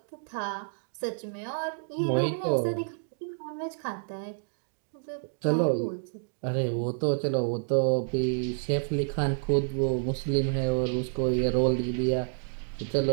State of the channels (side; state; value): left; silent; digital silence